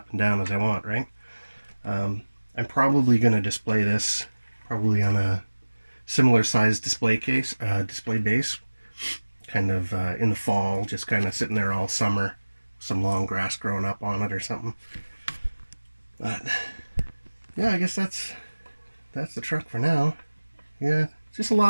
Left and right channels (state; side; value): inverted; both; correlation -1.00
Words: and down as I want, right? I'm probably going to display this probably on a similar size display case, display base, kind of in the fall, just kind of sitting there all summer, some long grass growing up on it or something. But yeah, I guess that's the truck for now. Yeah, just a